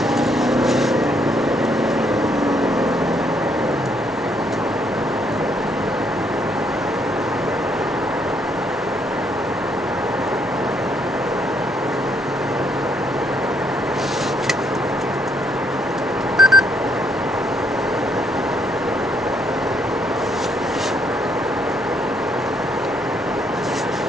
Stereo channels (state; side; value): normal; both; correlation 0.71